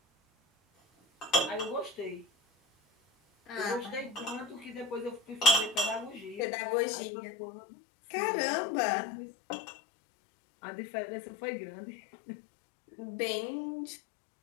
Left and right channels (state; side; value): drops out; right; at 6.5 s